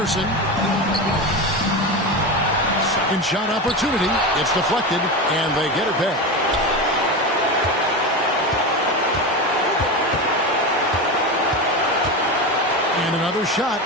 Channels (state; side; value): normal; both; correlation 0.21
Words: Second shot opportunity. It's deflected, and they get it back. And another shot.